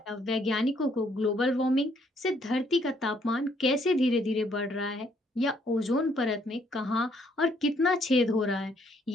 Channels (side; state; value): both; normal; correlation 0.68